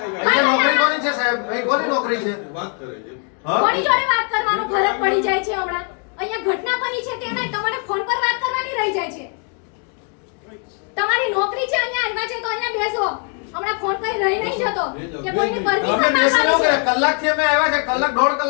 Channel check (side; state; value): right; quieter; 39.2 dB